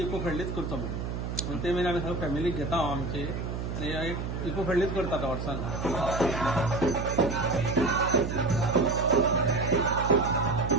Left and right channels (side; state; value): right; noise; hum, 4 dB below the sound